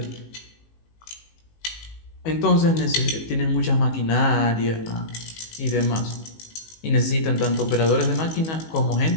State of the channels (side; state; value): right; late; 19 ms